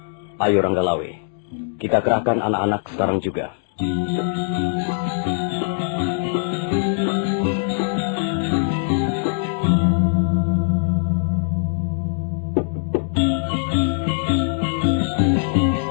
Ayo, Ranggalawe. Kita kerahkan anak-anak sekarang juga.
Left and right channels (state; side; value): silent; right; digital silence